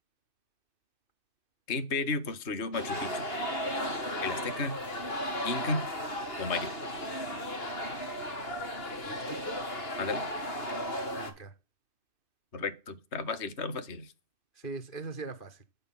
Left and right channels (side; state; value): right; late; 2.8 ms